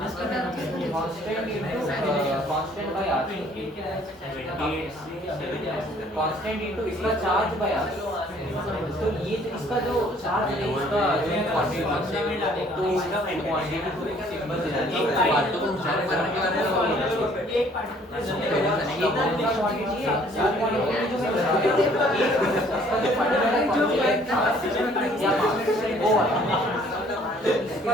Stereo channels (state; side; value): normal; both; correlation 0.59